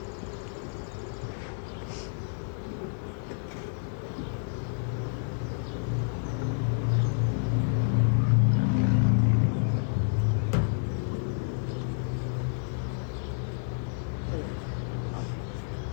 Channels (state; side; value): silent; right; digital silence